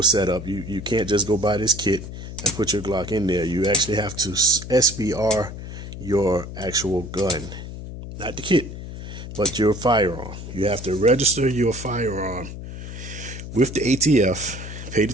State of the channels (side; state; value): left; noise; hum, 10 dB below the sound